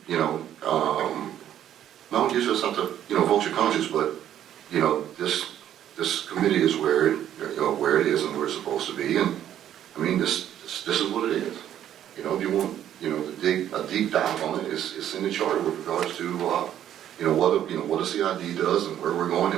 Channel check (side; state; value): left; quieter; 10.9 dB